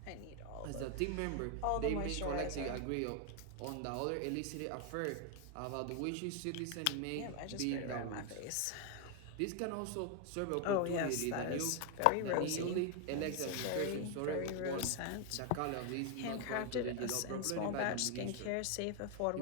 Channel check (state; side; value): different; both; correlation 0.01